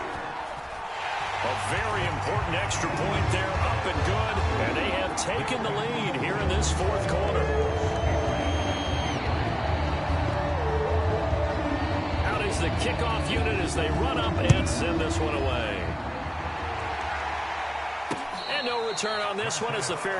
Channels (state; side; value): identical; both; correlation 1.00